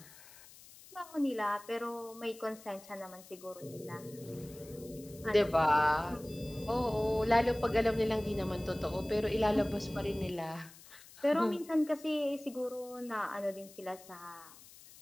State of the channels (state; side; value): noise; left; hiss, 20 dB below the sound